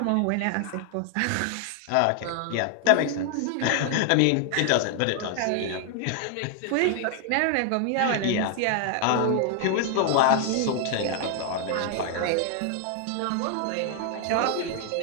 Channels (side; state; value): both; different; correlation 0.00